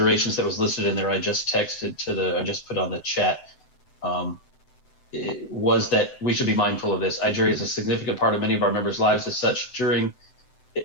that was listed in there, I just put on the chat, was that we should be mindful of this. IGRA is a significant part of many of our members' lives. As such,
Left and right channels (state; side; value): late; right; 7.8 ms